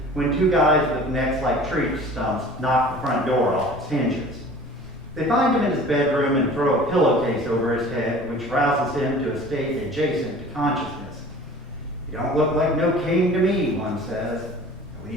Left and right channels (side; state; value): both; normal; correlation 0.44